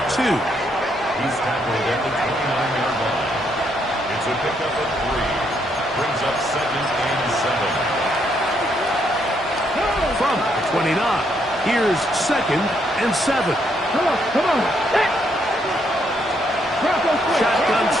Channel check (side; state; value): both; normal; correlation 0.74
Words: 2. He's tackled at the 29-yard line. It's a pickup of 3. Brings up 2nd and 7. From the 29, here's 2nd and 7. Come on. Shotgun